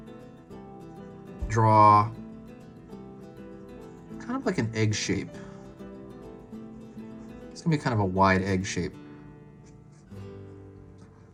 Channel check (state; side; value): identical; both; correlation 1.00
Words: draw kind of like an egg shape. It's gonna be kind of a wide egg shape.